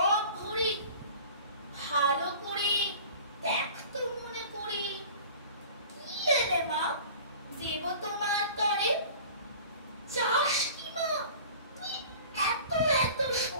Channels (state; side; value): inverted; both; correlation -0.42